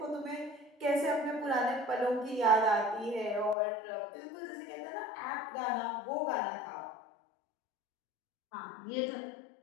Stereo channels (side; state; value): right; drops out; at 3.6 s